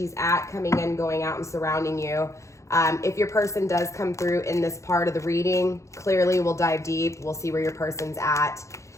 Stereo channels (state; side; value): late; right; 0.15 ms